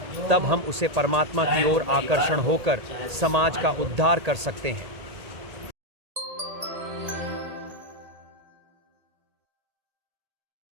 तब हम उसे परमात्मा की ओर आकर्षण होकर समाज का उद्धार कर सकते हैं।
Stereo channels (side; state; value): left; late; 1.8 ms